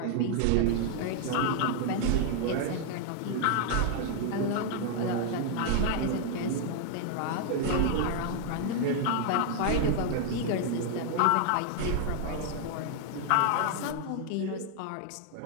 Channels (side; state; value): both; different; correlation 0.00